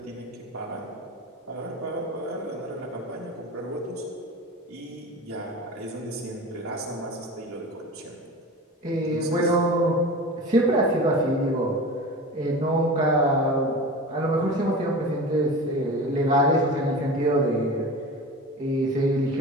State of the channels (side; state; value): both; normal; correlation 0.33